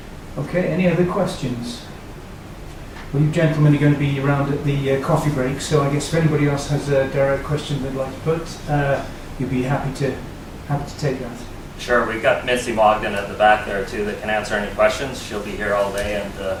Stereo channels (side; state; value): both; identical; correlation 1.00